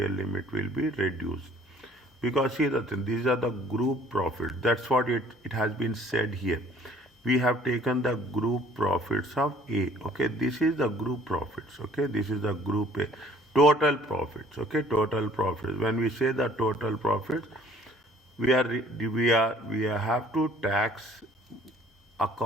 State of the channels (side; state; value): both; normal; correlation 0.56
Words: limit will be reduced. Because see the thing, these are the group profits. That's what it has been said here. We have taken the group profits of A. Okay, this is the group profits. Okay, this is the group A. Total profits. Okay, total profits. When we say the total profits, we have to tax